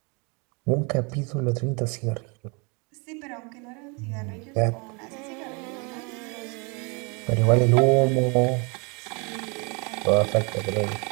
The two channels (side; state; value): left; quieter; 31.9 dB